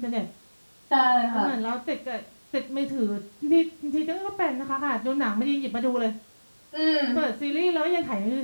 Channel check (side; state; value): both; inverted; correlation -1.00